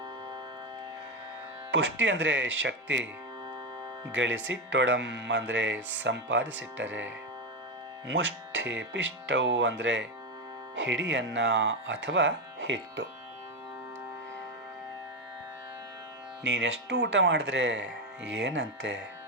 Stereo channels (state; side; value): normal; both; correlation 0.11